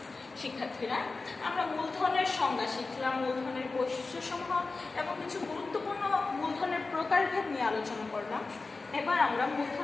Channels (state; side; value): quieter; right; 3.8 dB